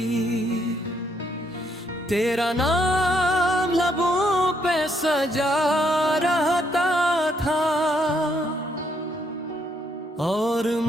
तेरा नाम लबों पे सजा रहता था और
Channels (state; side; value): normal; both; correlation 0.73